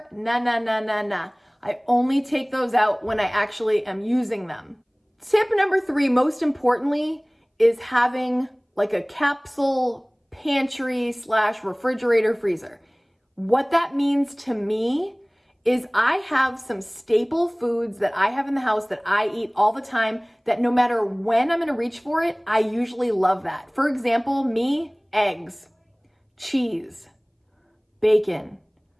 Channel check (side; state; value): both; identical; correlation 1.00